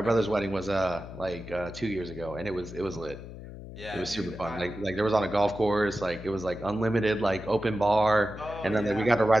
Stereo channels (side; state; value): left; noise; hum, 13 dB below the sound